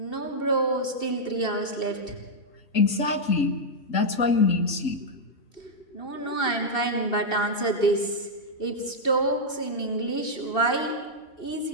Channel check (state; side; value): late; right; 2.7 ms